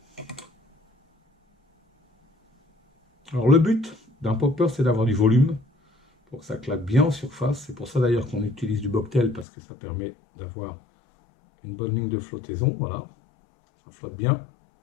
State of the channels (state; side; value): drops out; right; at 9.5 s